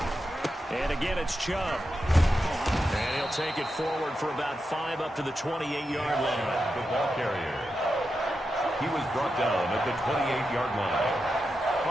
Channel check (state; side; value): normal; both; correlation 0.88